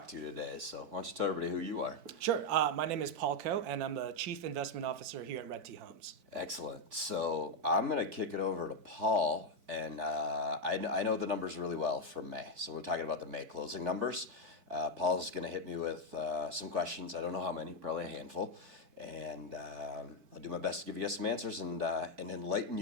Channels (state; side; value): late; left; 4.5 ms